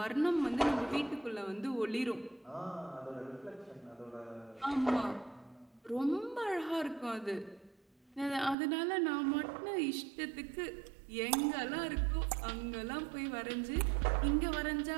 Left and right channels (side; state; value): left; drops out; at 8.6 s